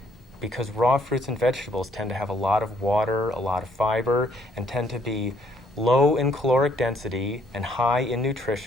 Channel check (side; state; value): both; normal; correlation 0.66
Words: because raw fruits and vegetables tend to have a lot of water, a lot of fiber, and tend to be low in caloric density and high in